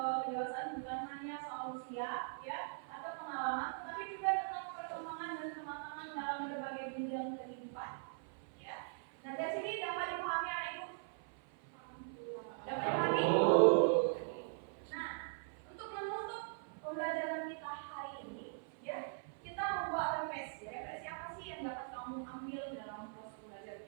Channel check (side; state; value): left; silent; 51 dB below the other